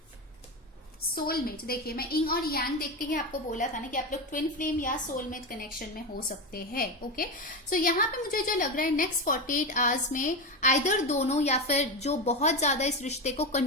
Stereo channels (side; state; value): both; normal; correlation 0.17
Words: soulmate. देखिए मैं इंग और यांग देख के ही आपको बोला था ना कि आप लोग ट्विन फ्लेम या सोलमेट कनेक्शन में हो सकते हैं। ओके, सो यहाँ पे मुझे जो लग रहा है नेक्स्ट 48 आवर्स में आइदर दोनों या फिर जो बहुत ज्यादा इस रिश्ते को